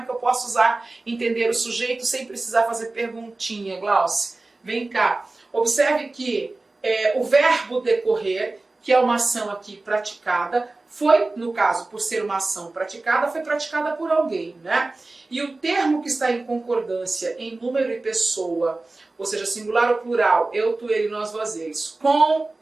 que eu posso entender o sujeito sem precisar fazer perguntinha, Glauce? Vem cá. Observe que o verbo decorrer, que é uma ação aqui praticada, foi, no caso, por ser uma ação praticada, foi praticada por alguém, né? E o termo que está em concordância em número e pessoa, ou seja, singular ou plural, eu, tu, ele, nós, vós, eles, com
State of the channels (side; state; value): left; quieter; 3.2 dB